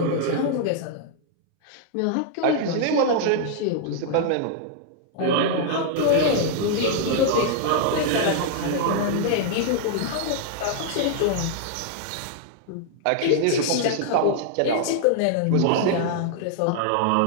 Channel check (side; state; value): both; different; correlation -0.01